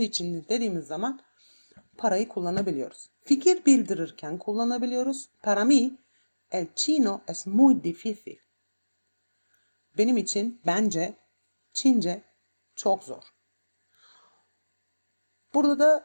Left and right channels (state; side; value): inverted; both; correlation -1.00